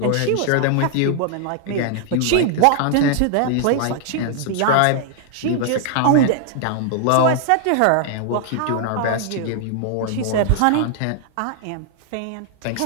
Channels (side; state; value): both; different; correlation 0.00